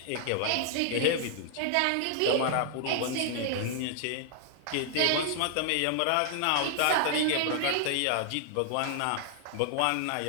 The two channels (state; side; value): different; both; correlation 0.00